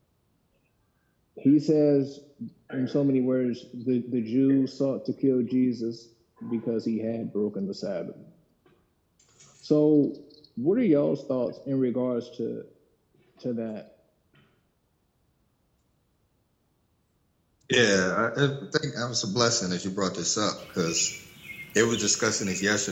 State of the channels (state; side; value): identical; both; correlation 1.00